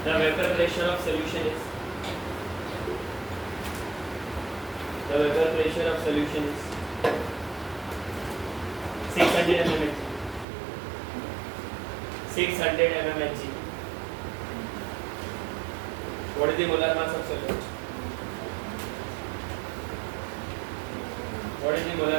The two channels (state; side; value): drops out; left; at 10.5 s